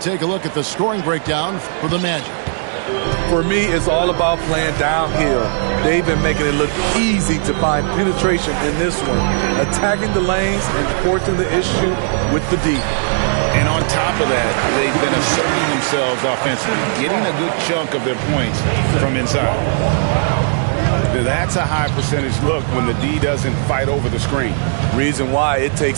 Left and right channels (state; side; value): silent; left; digital silence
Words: a look at the scoring breakdown for the Magic. For me, it's all about playing downhill. They've been making it look easy to find penetration in this one, attacking the lanes and forcing the issue with the D. And on top of that, they've been asserting themselves offensively, getting a good chunk of their points from inside. That's a high percentage look when the D doesn't fight over the screen. Reason why it